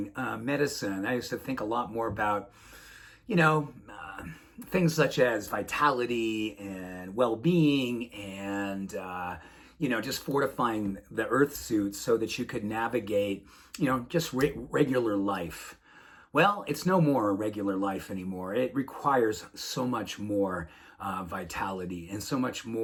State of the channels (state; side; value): identical; both; correlation 1.00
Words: medicine, I used to think a lot more about, things such as vitality and well-being and, just fortifying the earth suit so that you could navigate, just regular life. Well, it's no more a regular life anymore. It requires so much more vitality and so much